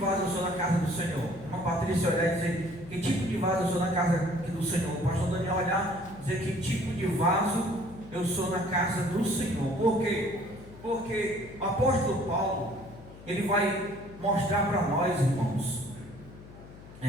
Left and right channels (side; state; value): left; noise; hum, 18 dB below the sound